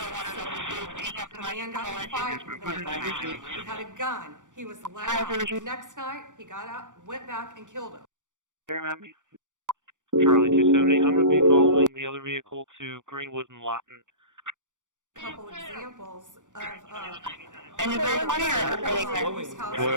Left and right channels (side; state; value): left; late; 0.86 ms